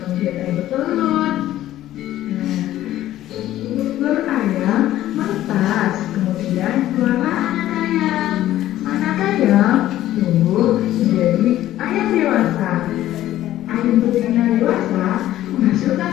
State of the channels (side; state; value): right; quieter; 13.7 dB